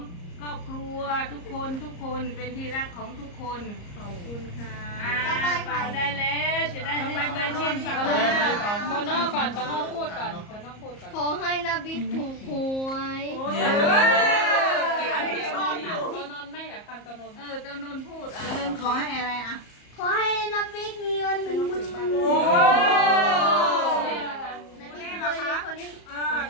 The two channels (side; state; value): right; late; 34 ms